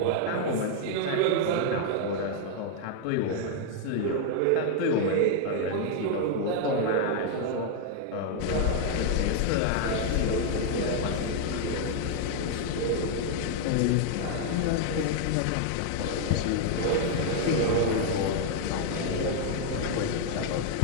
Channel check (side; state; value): both; different; correlation 0.00